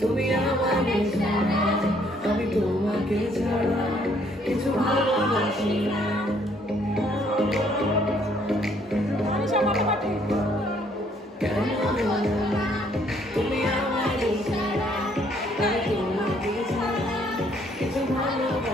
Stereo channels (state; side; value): normal; both; correlation 0.65